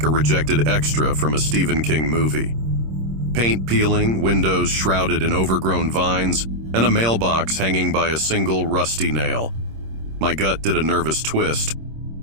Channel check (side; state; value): left; late; 26 ms